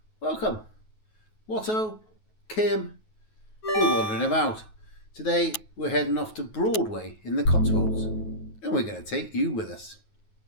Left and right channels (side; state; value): right; late; 9.3 ms